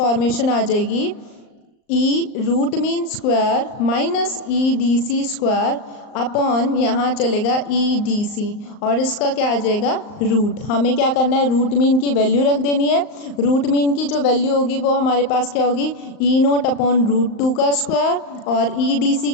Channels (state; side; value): late; right; 39 ms